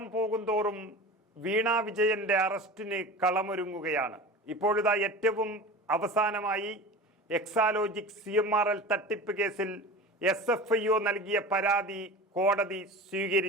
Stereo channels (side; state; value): both; normal; correlation 0.34